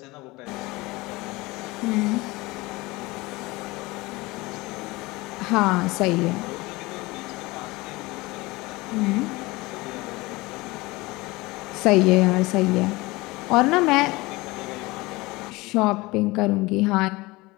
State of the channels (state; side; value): quieter; right; 21.9 dB